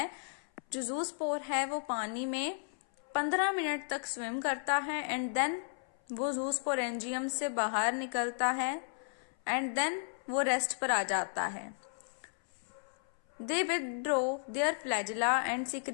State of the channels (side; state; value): right; silent; 55 dB below the other